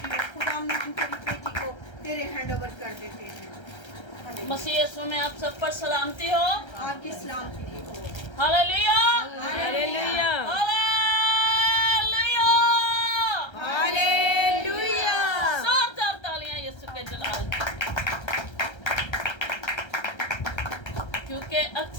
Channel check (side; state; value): right; late; 1.3 ms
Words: खुदा हम तेरी बेटी को तेरे हैंड ओवर कर देते हैं। मसीह यीशु में आप सब पर सलामती हो। आपकी सलामती हो। Hallelujah hallelujah hallelujah hallelujah. जोरदार तालियां यीशु के जलाल के लिए। क्योंकि